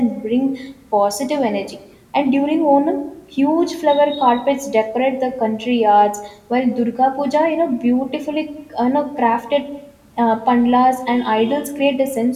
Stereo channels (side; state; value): both; identical; correlation 1.00